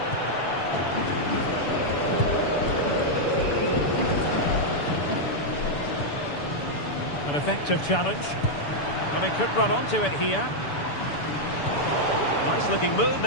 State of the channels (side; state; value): right; late; 7.0 ms